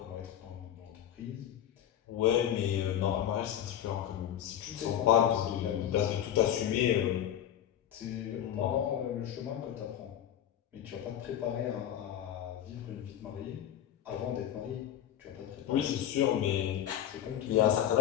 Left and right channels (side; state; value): right; quieter; 10.8 dB